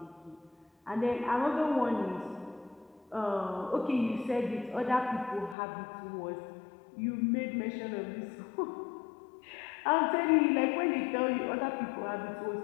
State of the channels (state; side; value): drops out; right; at 5.6 s